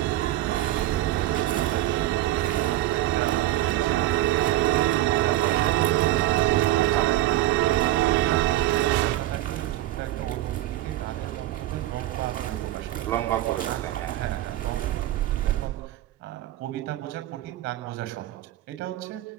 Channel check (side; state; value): left; quieter; 14.9 dB